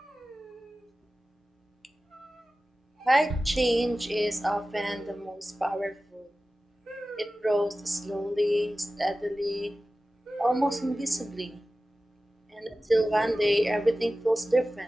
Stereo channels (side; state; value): both; normal; correlation 0.96